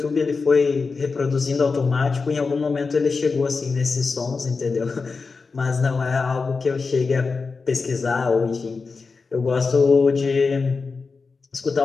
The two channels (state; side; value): quieter; right; 4.5 dB